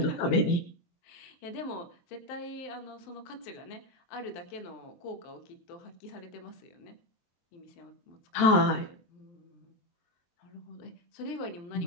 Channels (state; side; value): late; right; 23 ms